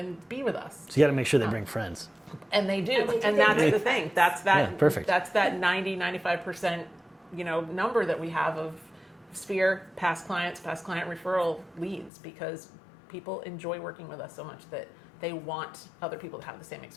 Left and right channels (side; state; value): right; drops out; at 12.1 s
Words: be with us. So you got to make sure they bring friends. And they do. And they do. And that's the thing. That's that. Yeah, perfect. That's that 90-95%, you know, number that we have of Sphere past client referral leads, because people enjoy working with us so much that they want other people to have the same